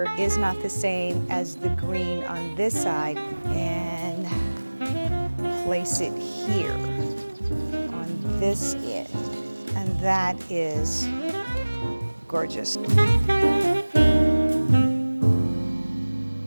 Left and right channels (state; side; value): inverted; both; correlation -1.00